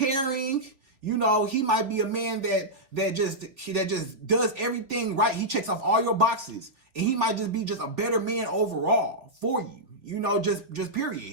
He might be a man that just does everything right. He checks off all your boxes, and he might just be just a better man overall for you. Just period.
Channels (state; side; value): late; left; 3.6 ms